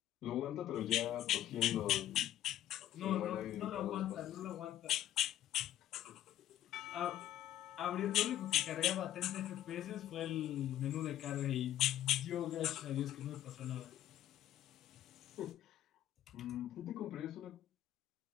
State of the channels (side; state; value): right; quieter; 12.5 dB